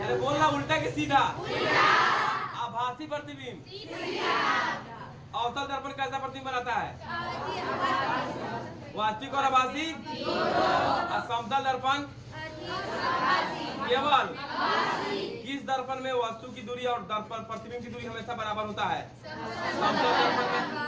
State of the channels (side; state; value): both; identical; correlation 1.00